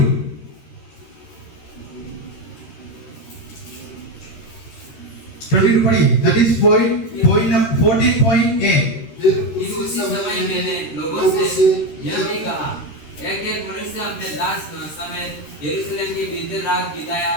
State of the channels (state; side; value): late; right; 13 ms